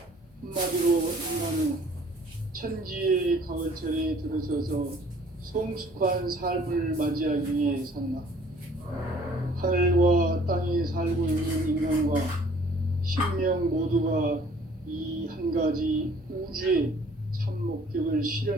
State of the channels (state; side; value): normal; both; correlation 0.56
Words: 한마디로 인간은 천지의 가을철에 들어서서 성숙한 삶을 맞이하기 위해 산다. 하늘과 땅에 살고 있는 인간과 신명 모두가 이 한 가지 우주의 참 목적을